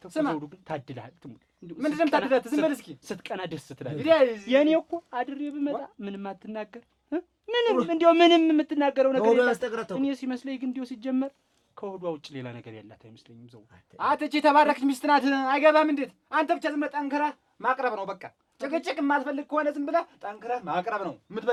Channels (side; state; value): both; identical; correlation 1.00